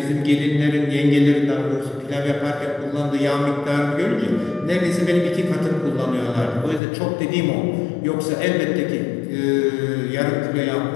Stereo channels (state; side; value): drops out; right; at 6.8 s